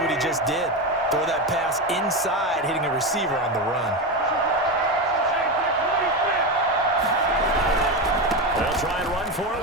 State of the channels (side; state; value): both; normal; correlation 0.16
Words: he just did. Throw that pass inside, hitting a receiver on the run. They'll try and run for it